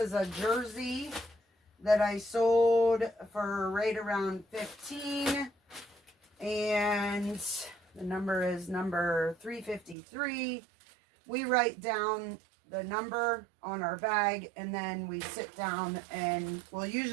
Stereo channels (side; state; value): left; drops out; at 10.0 s